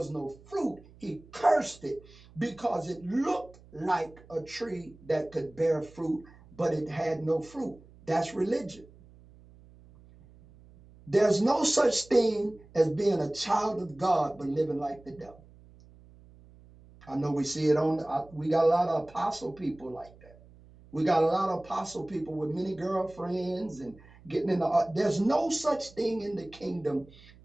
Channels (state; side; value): noise; right; hum, 24 dB below the sound